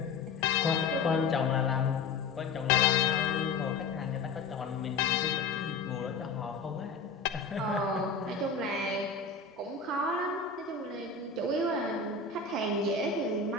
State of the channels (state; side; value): quieter; right; 4.6 dB